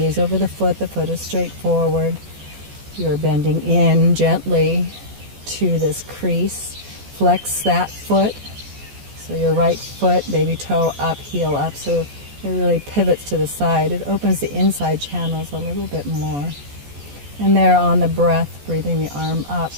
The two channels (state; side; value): late; left; 14 ms